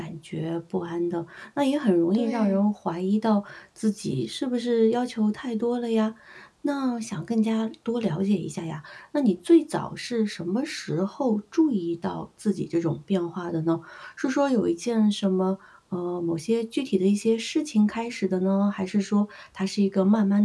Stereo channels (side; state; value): both; identical; correlation 1.00